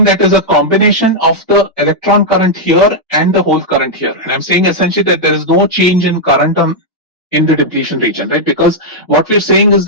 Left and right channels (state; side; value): normal; both; correlation -0.04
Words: that is a combination of the electron current here and the hole current here. And I'm saying essentially that there is no change in current in the depletion region, right? Because what we're saying is